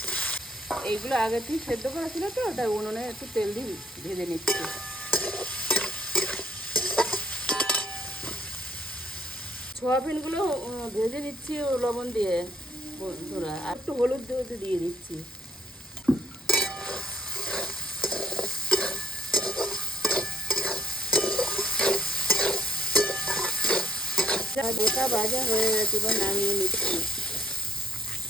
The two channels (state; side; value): normal; both; correlation 0.70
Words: এইগুলো আগে থেকে সেদ্ধ করা ছিল, তো তাই উনুনে একটু তেল দিয়ে ভেজে নিচ্ছি। সয়াবিনগুলো ভেজে নিচ্ছি লবণ দিয়ে বন্ধুরা, আর একটু হলুদ দিয়ে দিচ্ছি। গোটা ভাজা হয়ে গেছে, এবার নামিয়ে নিচ্ছি।